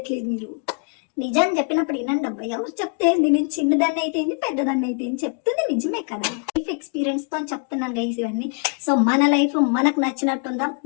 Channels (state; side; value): quieter; right; 38.9 dB